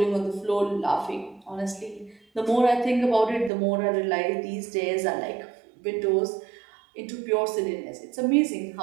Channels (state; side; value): drops out; left; at 3.5 s